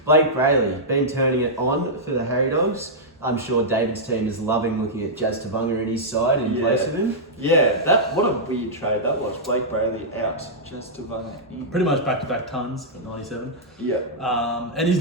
Blake Brayley, been turning it on for the Harry Dogs. I'm sure David's team is loving looking at Jazz Tavunga in his side in place of him. Yeah, what a weird trade that was. Blake Brayley out, just to run in. Pretty much back-to-back tons at 97. Yeah. And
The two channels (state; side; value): normal; both; correlation -0.10